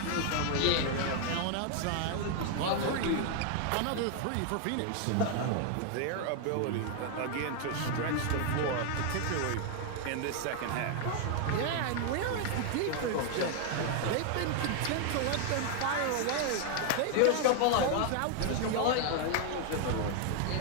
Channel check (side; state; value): both; different; correlation 0.00